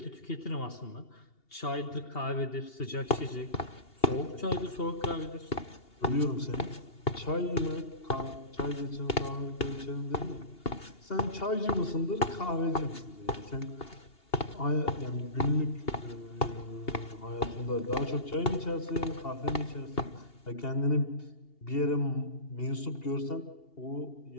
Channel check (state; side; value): late; right; 2.8 ms